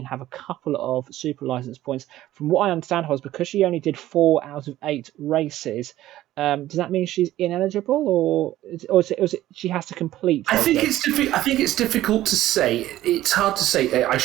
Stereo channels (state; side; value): quieter; left; 14.5 dB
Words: have a couple of super license points. From what I understand, was because she only did 4 out of 8 races. Does that mean she's ineligible, or is it she has to complete? I think it's difficult to say. It's hard to say. I